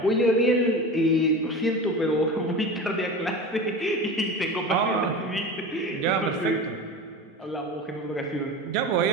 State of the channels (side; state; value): both; normal; correlation 0.30